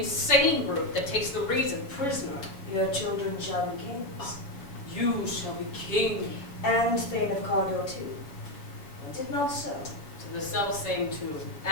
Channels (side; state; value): right; late; 7.2 ms